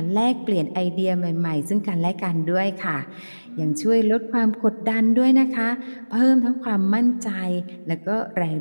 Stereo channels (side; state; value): both; inverted; correlation -1.00